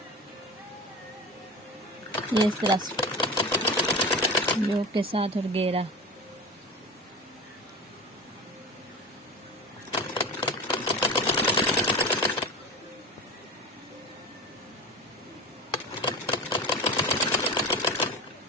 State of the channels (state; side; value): normal; both; correlation 0.29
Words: ये इस तरह योक के साथ और घेरा।